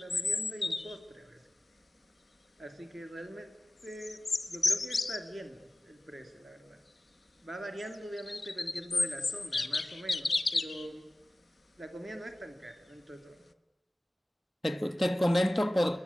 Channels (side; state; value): both; normal; correlation 0.97